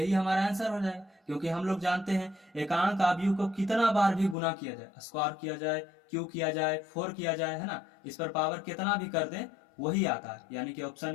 हमारा आंसर हो जाएगा। क्योंकि हम लोग जानते हैं एकांक आव्यूह को कितना बार भी गुना किया जाए, स्क्वायर किया जाए, क्यूब किया जाए, 4 किया जाए, है ना, इस पर पावर कितना भी कर दें वही आता है, यानी कि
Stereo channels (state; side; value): drops out; right; at 4.4 s